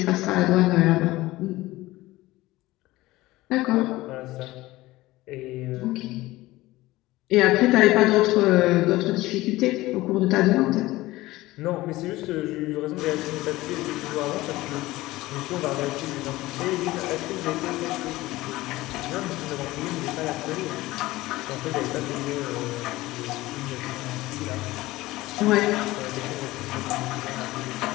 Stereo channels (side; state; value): right; quieter; 18.3 dB